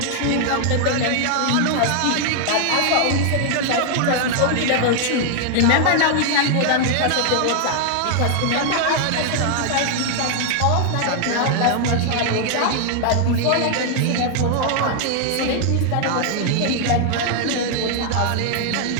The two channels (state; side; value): different; both; correlation 0.00